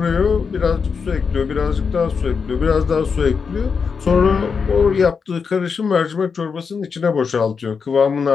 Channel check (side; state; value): right; quieter; 5.7 dB